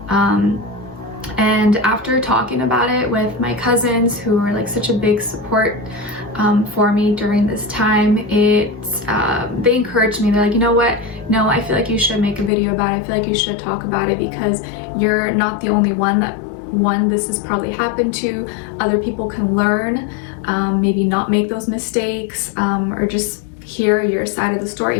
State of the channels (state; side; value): drops out; right; at 12.5 s